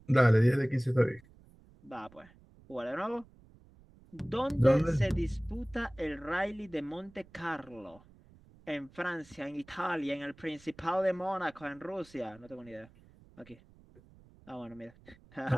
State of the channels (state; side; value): noise; right; rumble, 25 dB below the sound